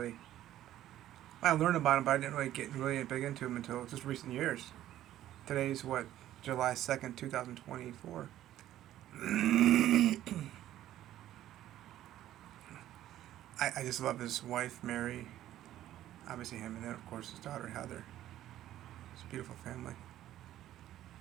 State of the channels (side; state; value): left; quieter; 13.0 dB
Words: well, I learned about him, but I didn't really get really big into him until just recent years. Today's what, July 2nd, 2024. I just love his wife, Mary, obviously him, and then, of course, his daughter, Heather. It's a beautiful family.